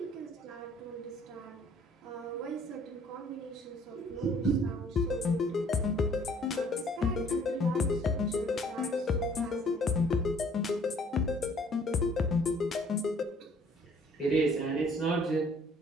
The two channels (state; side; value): normal; both; correlation 0.58